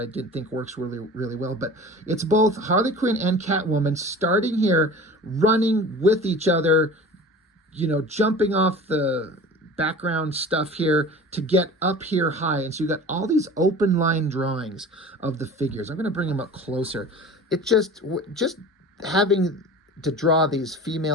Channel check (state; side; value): normal; both; correlation 0.39